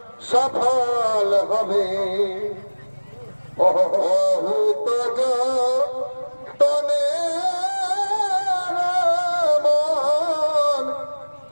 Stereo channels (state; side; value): inverted; both; correlation -1.00